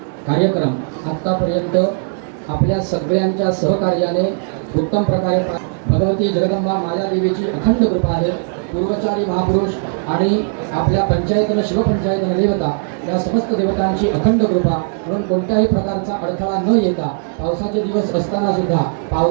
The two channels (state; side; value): silent; left; digital silence